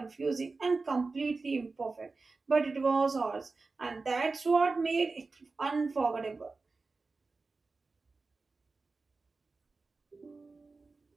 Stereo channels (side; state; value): left; quieter; 3.9 dB